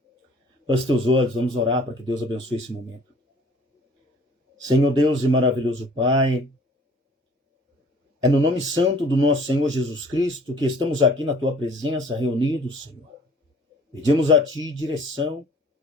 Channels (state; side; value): normal; both; correlation 0.53